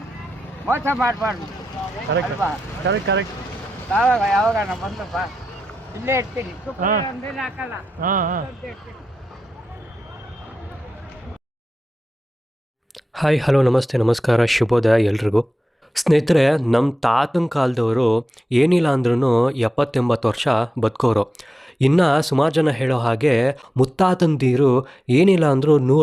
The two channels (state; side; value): normal; both; correlation 0.92